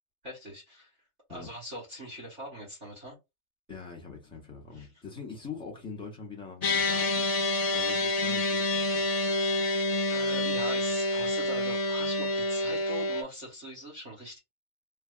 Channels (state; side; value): late; left; 3.3 ms